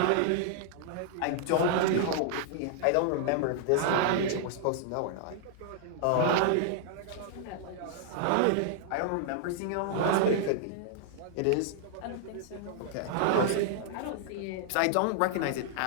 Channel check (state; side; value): different; both; correlation -0.01